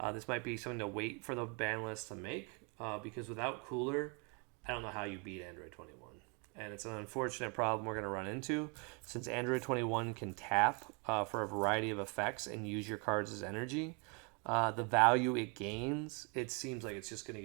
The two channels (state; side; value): quieter; left; 34.2 dB